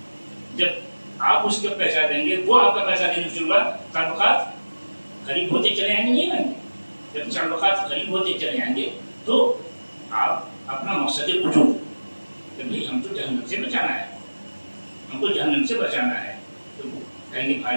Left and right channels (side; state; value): both; inverted; correlation -1.00